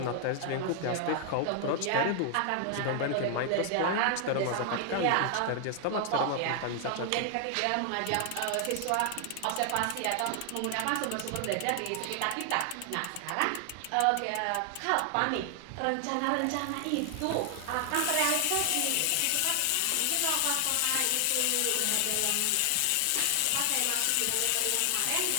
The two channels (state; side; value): different; both; correlation 0.00